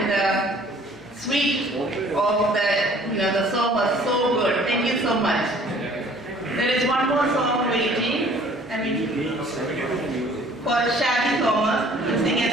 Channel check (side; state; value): both; normal; correlation 0.54